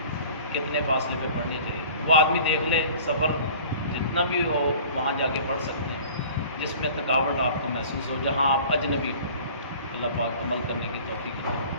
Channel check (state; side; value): inverted; both; correlation -0.45